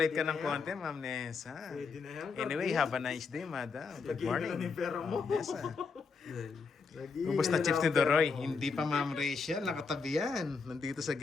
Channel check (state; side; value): quieter; right; 4.9 dB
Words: ka Pwede ng na yan. konti, Ma'am Nessa. Pwede na yan. Anyway, have a nice day, madam. Good Lagyan morning. ka na ng pera mo. Ma'am Nessa. Yan. Lagi Ubus na ka chips lang ni ang pera Doroy. mo. Hindi pa Ma'am Rachel, nakatabi yan. Nandito sa